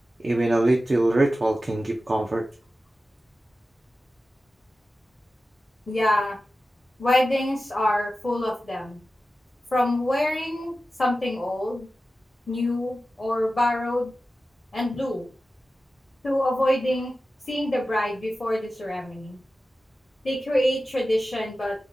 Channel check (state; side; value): normal; both; correlation 0.94